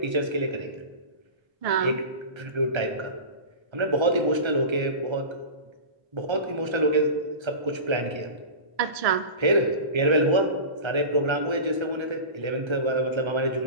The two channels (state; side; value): late; left; 1.3 ms